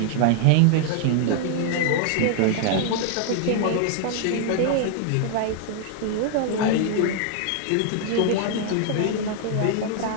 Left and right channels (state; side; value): different; both; correlation 0.00